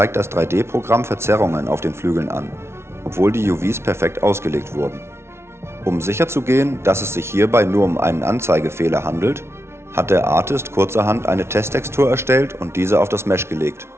das 3D-Programm Verzerrungen auf den Flügeln an, obwohl die UVs perfekt ausgelegt wurden. Um sicherzugehen, dass es sich hierbei nur um einen Anzeigefehler handelt, hat der Artist kurzerhand eine Testtextur erstellt und diese auf das Mesh gelegt.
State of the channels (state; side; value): late; left; 0.12 ms